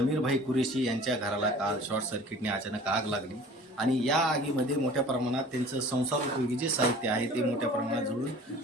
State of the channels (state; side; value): normal; both; correlation 0.45